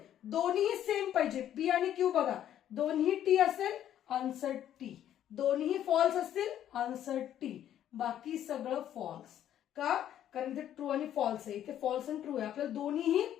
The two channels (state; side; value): quieter; right; 11.0 dB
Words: दोन्ही सेम पाहिजे, पी आणि क्यू बघा, दोन्ही टी असेल आन्सर टी, दोन्ही फॉल्स असतील आन्सर टी, बाकी सगळं फॉल्स. का, कारण इथे ट्रू आणि फॉल्स आहे, इथे फॉल्स आणि ट्रू आहे. आपल्याला दोन्हीही